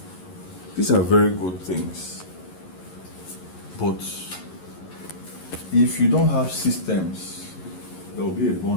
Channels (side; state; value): right; late; 11 ms